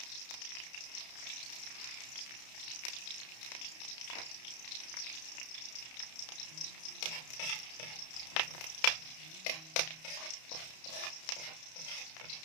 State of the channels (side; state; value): right; late; 31 ms